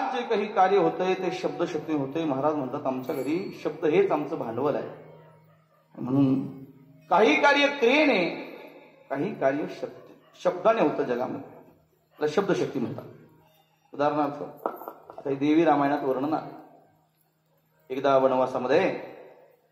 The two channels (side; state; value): both; identical; correlation 1.00